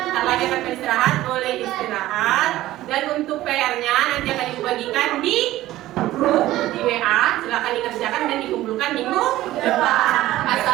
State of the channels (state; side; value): quieter; left; 15.5 dB